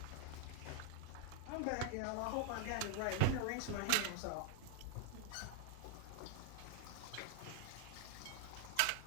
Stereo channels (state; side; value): different; both; correlation -0.01